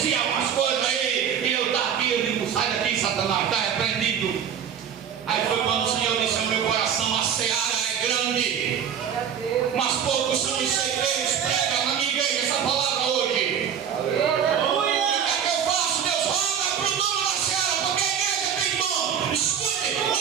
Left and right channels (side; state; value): left; quieter; 8.3 dB